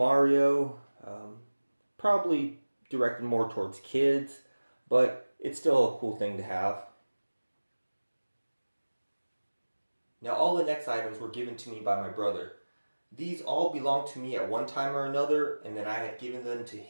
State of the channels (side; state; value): both; inverted; correlation -1.00